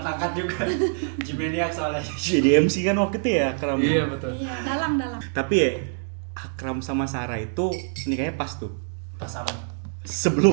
juga. Jimeniak soalnya. Jadi MC kan waktu itu ya Akram. Iya betul. Iya, dalam. Tapi ya Akram sama Sarah itu nikahnya pas tuh. Pas apa?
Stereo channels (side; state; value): left; silent; digital silence